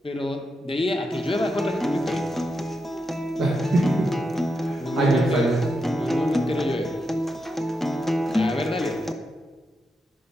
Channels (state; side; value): normal; both; correlation 0.85